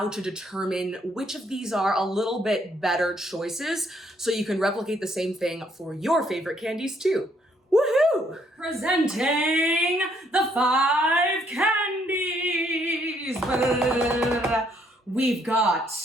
to determine which of these are a little bit better choices so you can replicate the same thing for your favorite candies too. Woohoo! Presenting the 5 candies. We've got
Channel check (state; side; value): normal; both; correlation 0.69